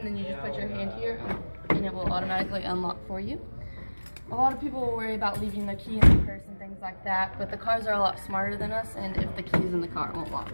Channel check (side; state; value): both; inverted; correlation -1.00